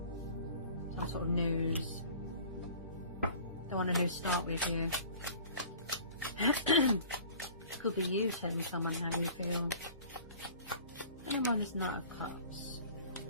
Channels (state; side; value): inverted; both; correlation -0.46